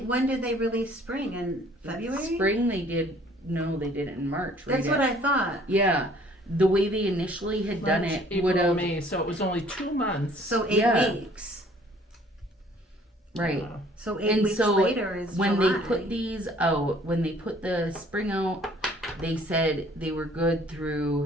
when did they release spring? In February? Spring they did, no, they did it in March. That's what I thought. Yeah, the way they initially had done March, it April, would have, May, so it was only 2 months. So 8 Yeah. weeks. right. So 8 And weeks so later is When July. they put these out, when they put the spring out, they said they were good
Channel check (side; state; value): both; normal; correlation 0.57